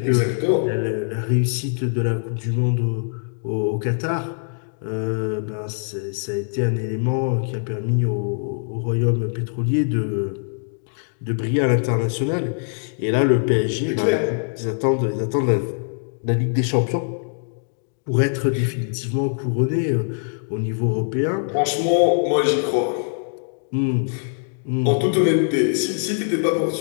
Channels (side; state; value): right; silent; digital silence